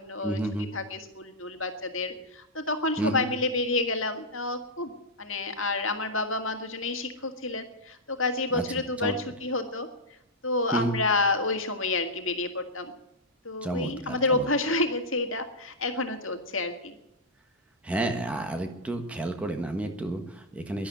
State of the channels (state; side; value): normal; both; correlation -0.04